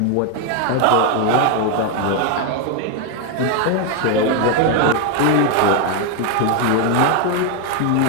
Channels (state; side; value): different; both; correlation 0.01